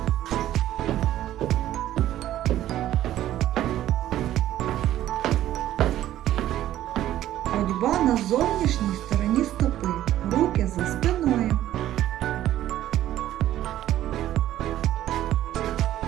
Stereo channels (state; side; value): quieter; left; 13.1 dB